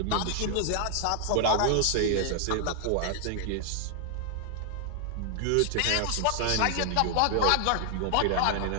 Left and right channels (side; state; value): both; different; correlation 0.00